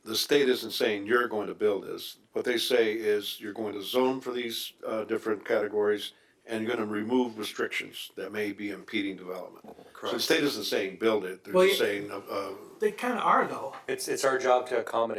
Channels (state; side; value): identical; both; correlation 1.00